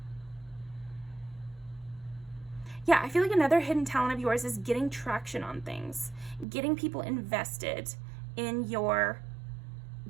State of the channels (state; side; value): drops out; left; at 6.5 s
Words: Yeah, I feel like another hidden talent of yours is getting traction on things, getting people invested in your